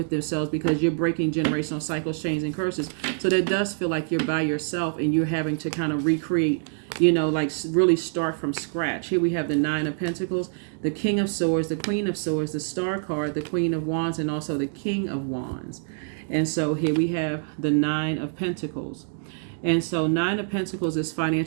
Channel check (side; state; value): left; silent; digital silence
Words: themselves, because you're breaking generational cycles, chains, and curses. So that does feel like you're by yourself and you're having to kind of recreate, like really start from scratch. Here we have the 9 of Pentacles, the King of Swords, the Queen of Swords, the Star card, the Queen of Wands, and also the King of Wands. And so here we have the 9 of Pentacles. And so 9 of Pentacles is